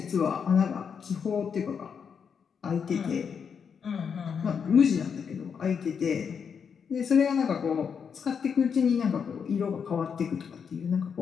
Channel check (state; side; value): quieter; right; 6.7 dB